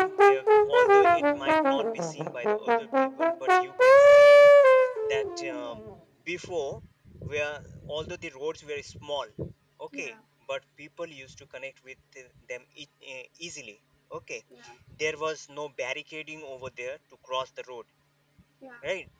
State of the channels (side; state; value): both; identical; correlation 1.00